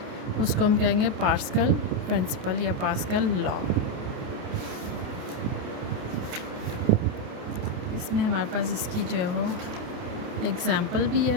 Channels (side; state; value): left; late; 28 ms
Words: उसको हम कहेंगे पास्कल प्रिंसिपल या पास्कल लॉ। इसमें हमारे पास इसकी जो है वो एग्जांपल भी